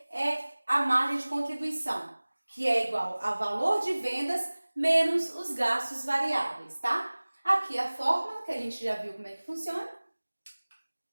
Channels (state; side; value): inverted; both; correlation -1.00